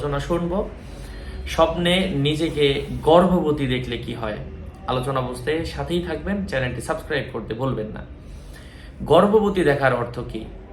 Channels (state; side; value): identical; both; correlation 1.00